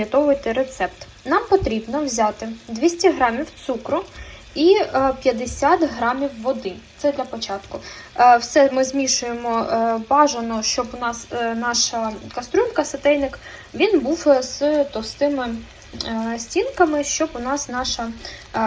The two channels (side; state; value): both; identical; correlation 1.00